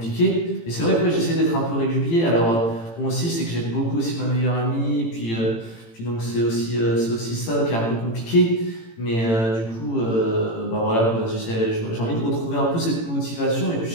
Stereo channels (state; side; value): late; right; 18 ms